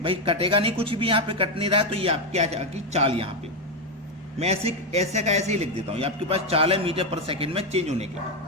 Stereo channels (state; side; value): normal; both; correlation 0.06